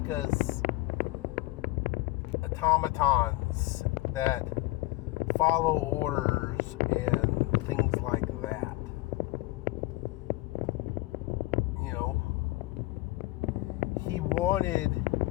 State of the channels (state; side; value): quieter; right; 20.4 dB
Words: us automatons that follow orders and things like that. He wanted